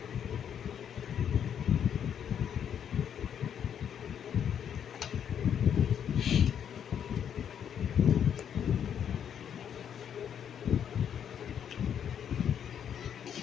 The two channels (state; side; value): quieter; right; 8.6 dB